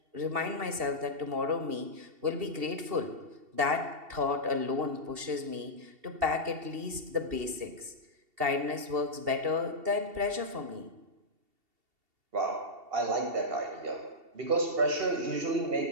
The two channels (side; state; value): left; late; 2.7 ms